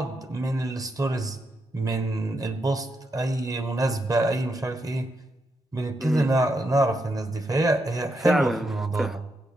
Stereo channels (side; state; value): both; normal; correlation 0.82